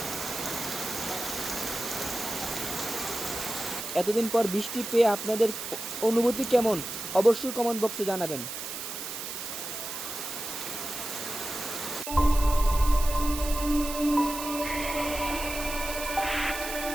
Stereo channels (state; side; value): noise; right; hiss, 7 dB below the sound